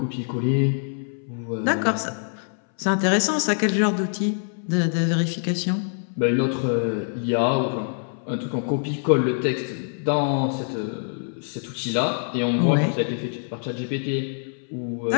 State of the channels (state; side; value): silent; right; 62 dB below the other